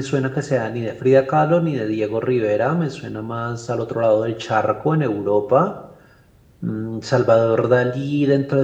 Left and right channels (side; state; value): both; identical; correlation 1.00